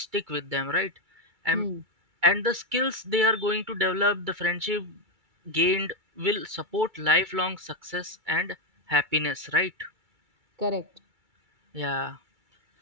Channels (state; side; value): late; left; 2.3 ms